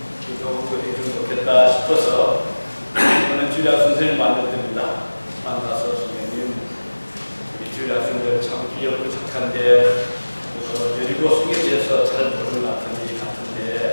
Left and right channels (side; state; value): both; inverted; correlation -1.00